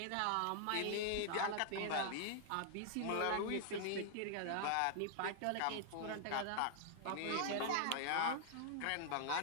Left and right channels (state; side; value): different; both; correlation 0.00